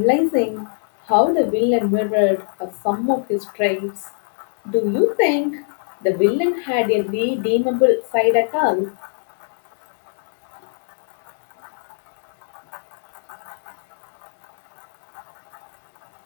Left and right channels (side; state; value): right; silent; digital silence